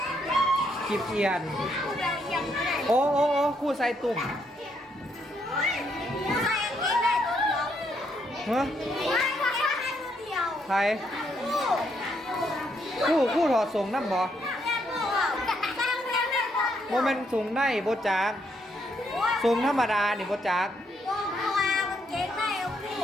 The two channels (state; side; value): normal; both; correlation 0.75